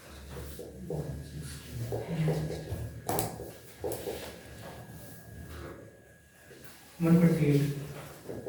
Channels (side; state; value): both; identical; correlation 1.00